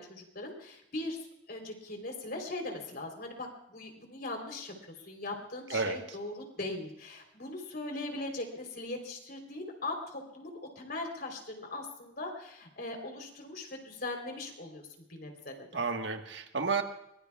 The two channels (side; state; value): both; normal; correlation -0.10